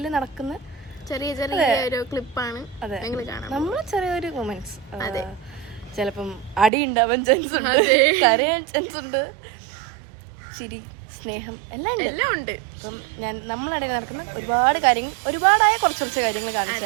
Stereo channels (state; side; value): drops out; left; at 6.7 s